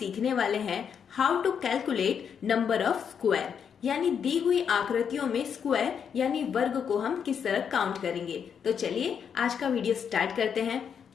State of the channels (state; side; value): quieter; right; 7.4 dB